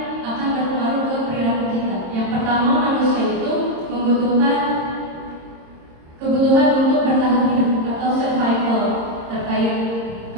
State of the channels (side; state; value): left; late; 26 ms